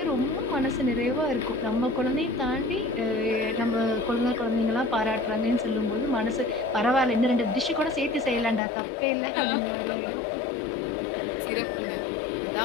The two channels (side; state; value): right; drops out; at 8.6 s